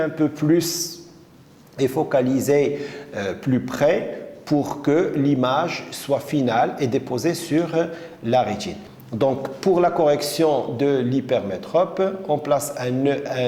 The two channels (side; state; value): both; identical; correlation 1.00